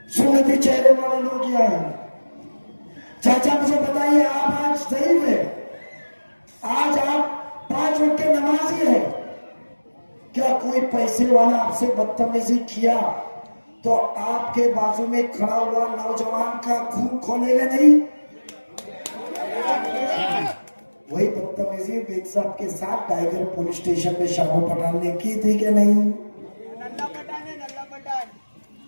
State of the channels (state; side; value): inverted; both; correlation -1.00